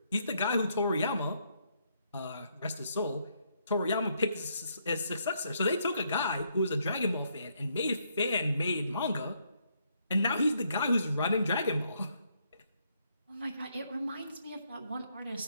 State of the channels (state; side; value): inverted; both; correlation -0.73